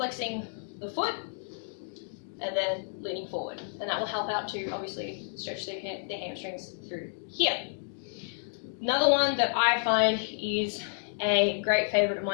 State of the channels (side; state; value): right; silent; digital silence